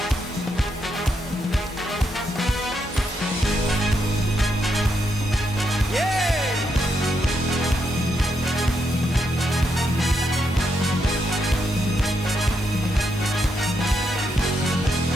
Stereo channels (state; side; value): normal; both; correlation 0.80